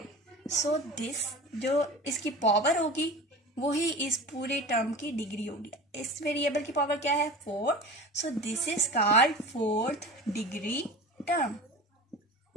सो दिस जो इसकी पावर होगी वही इस पूरे टर्म की डिग्री होगी। इस वेरिएबल की पावर क्या है? 4। So this is called fourth degree term.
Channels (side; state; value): both; normal; correlation 0.34